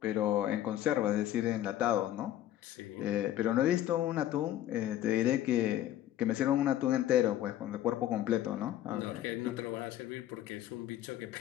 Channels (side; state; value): right; quieter; 12.7 dB